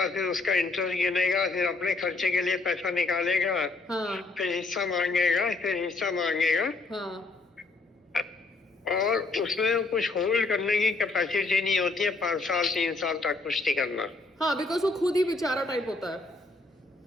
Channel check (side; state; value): right; quieter; 3.4 dB